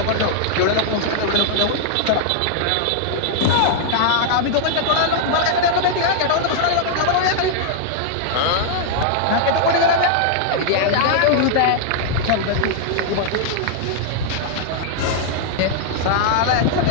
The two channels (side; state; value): both; different; correlation -0.01